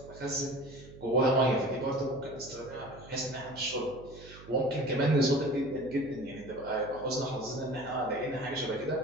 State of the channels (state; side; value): noise; right; hum, 18 dB below the sound